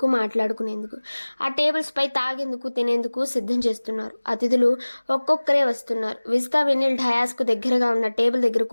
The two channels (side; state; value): both; inverted; correlation -1.00